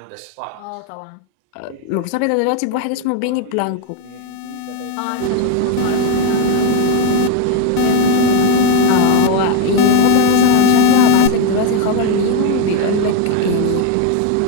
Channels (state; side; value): different; both; correlation 0.01